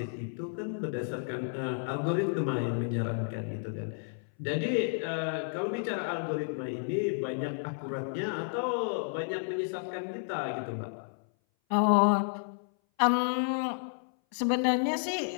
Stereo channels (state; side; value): silent; right; 57 dB below the other